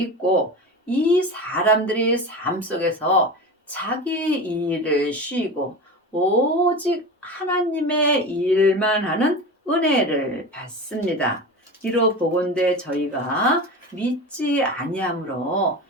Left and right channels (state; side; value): normal; both; correlation 0.28